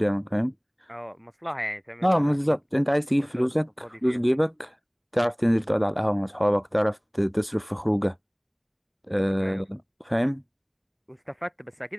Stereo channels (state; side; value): identical; both; correlation 1.00